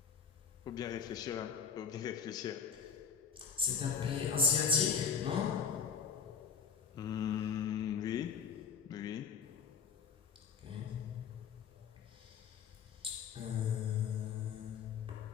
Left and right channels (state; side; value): quieter; right; 6.7 dB